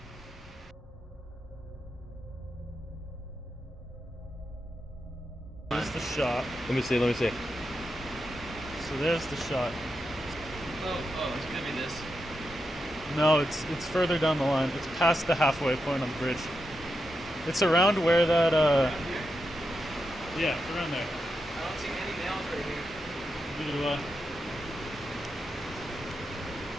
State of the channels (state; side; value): normal; both; correlation 0.86